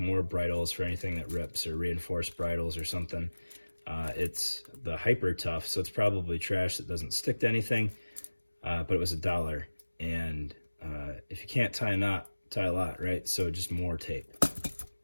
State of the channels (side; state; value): both; inverted; correlation -1.00